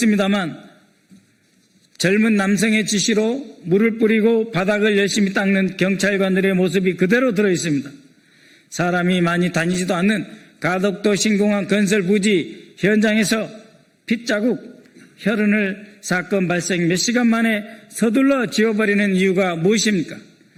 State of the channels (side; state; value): both; identical; correlation 1.00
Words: 젊은 남성의 지시로 물을 뿌리고 바닥을 열심히 닦는 경찰관들의 모습이 그대로 들어있습니다. 사람이 많이 다니지도 않는 가덕도 신공항 건설 부지 현장에서 핏자국, 혈흔을 사건 발생 몇 시간 만에 서둘러 지워버리는 이유가 무엇입니까?